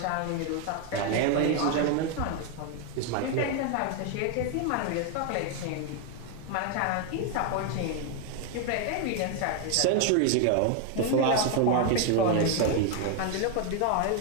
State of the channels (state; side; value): different; both; correlation 0.01